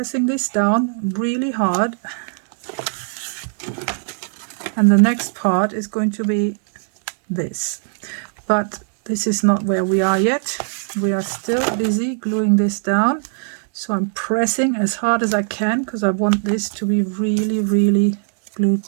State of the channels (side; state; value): left; silent; 66 dB below the other